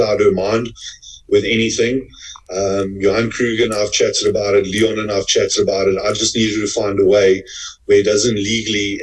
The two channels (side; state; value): both; identical; correlation 1.00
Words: her mind with anything. Johan Kruger and I've chatted about it. Leon and I've chatted about it. I just needed to find a way where it doesn't legally